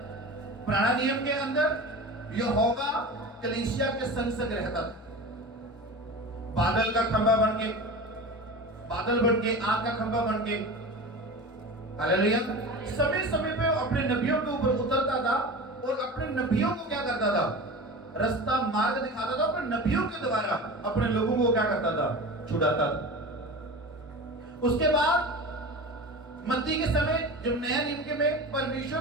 पुराने नियम के अंदर यहोवा कलीसिया के संग संग रहता था। बादल का खंभा बन के, बादल बन के, आग का खंभा बन के, हालेलुया, समय समय पे अपने नबियों के ऊपर उतरता था और अपने नबियों को क्या करता था, रास्ता मार्ग दिखाता था। अपने नबियों के द्वारा अपने लोगों को क्या करता था, छुड़ाता था। उसके बाद मत्ती के समय, जब नया नियम के में परमेश्वर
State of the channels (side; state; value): both; normal; correlation 0.32